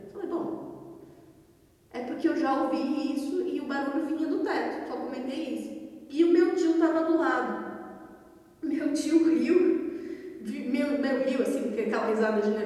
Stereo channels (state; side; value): identical; both; correlation 1.00